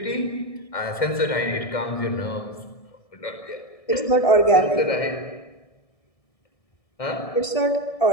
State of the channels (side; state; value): right; late; 1.6 ms